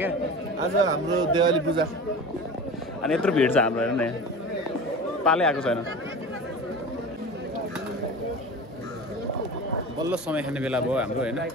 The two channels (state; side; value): normal; both; correlation 0.33